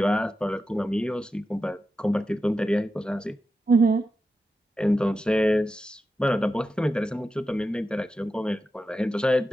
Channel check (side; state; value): both; normal; correlation 0.90